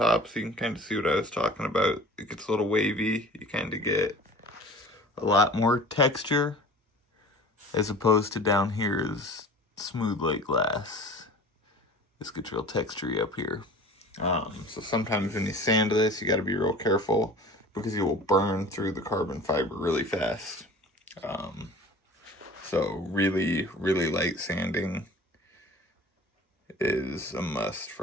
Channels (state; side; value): normal; both; correlation 0.42